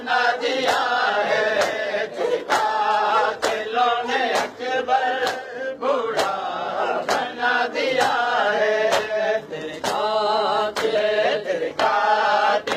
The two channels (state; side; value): identical; both; correlation 1.00